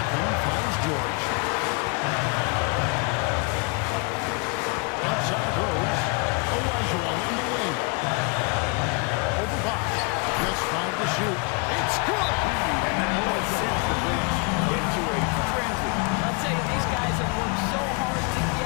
finds George. Outside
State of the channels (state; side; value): quieter; right; 33.6 dB